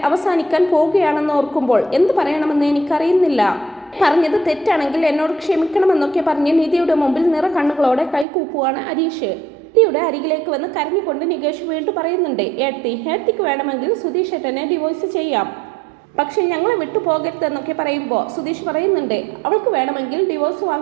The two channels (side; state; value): left; drops out; at 8.2 s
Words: അവസാനിക്കാൻ പോവുകയാണെന്ന് ഓർക്കുമ്പോൾ എന്ത് പറയണമെന്ന് എനിക്കറിയുന്നില്ല. പറഞ്ഞത് തെറ്റാണെങ്കിൽ എന്നോട് ക്ഷമിക്കണമെന്നൊക്കെ പറഞ്ഞ് നിധിയുടെ മുമ്പിൽ നിറ കണ്ണുകളോടെ കൈകൂപ്പുവാണ് ഹരീഷ്. നിധിയുടെ അരികിലേക്ക് വന്ന് കരഞ്ഞുകൊണ്ട് നികേഷ് വീണ്ടും പറയുന്നുണ്ട്, ഏടത്തിക്ക് വേണമെങ്കിൽ സുധീഷ് ഏട്ടനെ ഡിവോഴ്സ് ചെയ്യാം, പക്ഷെ ഞങ്ങളെ വിട്ടു പോകരുതെന്നൊക്കെ പറയുമ്പോൾ സുധീഷ് പറയുന്നുണ്ട്, അവൾക്ക് വേണമെങ്കിൽ ഡിവോഴ്സ്